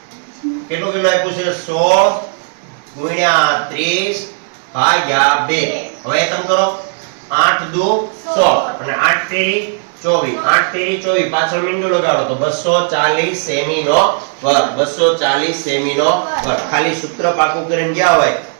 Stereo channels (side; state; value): left; silent; 57 dB below the other